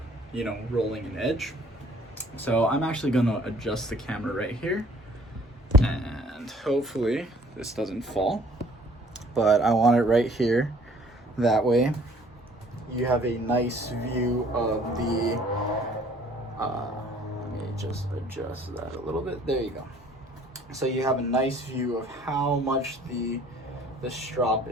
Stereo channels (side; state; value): both; normal; correlation 0.56